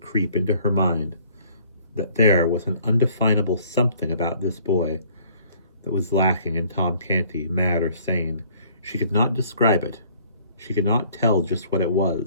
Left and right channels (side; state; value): both; inverted; correlation -0.58